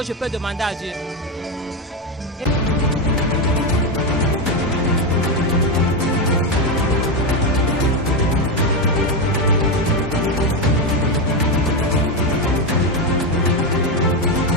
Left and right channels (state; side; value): normal; both; correlation 0.10